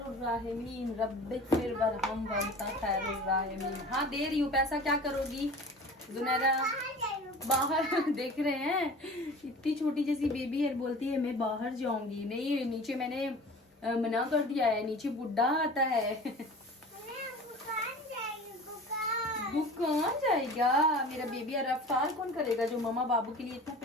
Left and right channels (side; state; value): both; normal; correlation 0.39